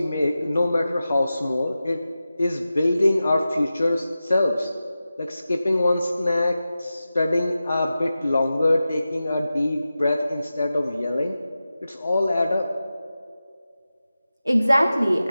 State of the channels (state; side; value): inverted; both; correlation -0.94